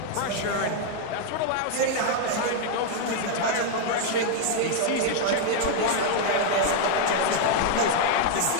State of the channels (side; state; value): both; different; correlation 0.00